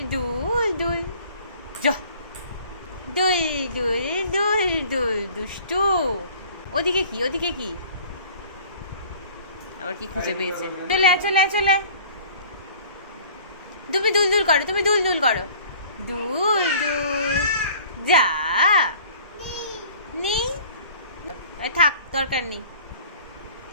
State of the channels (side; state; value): both; inverted; correlation -0.49